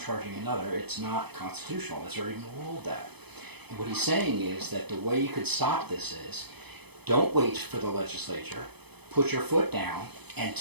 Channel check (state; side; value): late; left; 0.98 ms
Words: another. It's not constitutional. It's already been ruled that. And what he's saying is that the way you could stop this is, don't wait for the legislature, put your foot down and